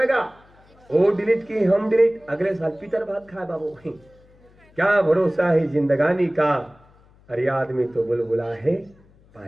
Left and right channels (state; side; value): noise; left; hum, 29 dB below the sound